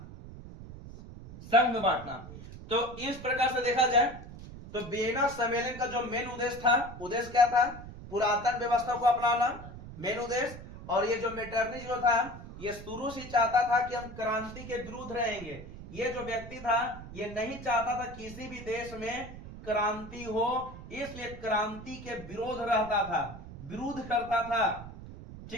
संघ में बांटना। तो इस प्रकार से देखा जाए तो वियना सम्मेलन का जो मेन उद्देश्य था, उद्देश्य क्या था? पुरातन व्यवस्था को अपनाना, मेन उद्देश्य। और ये जो मेटरनी जो था, ये शुरू से चाहता था कि हम क्रांति के विरुद्ध रहेंगे। ये जो व्यक्ति था ये नहीं चाहता था किसी भी देश में क्रांति हो, इसलिए क्रांति के विरोध रहता था, विरोध करता था,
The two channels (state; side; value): noise; right; rumble, 14 dB below the sound